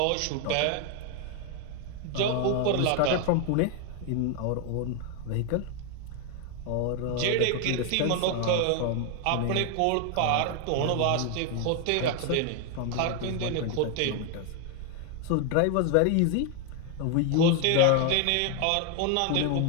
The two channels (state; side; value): different; both; correlation 0.01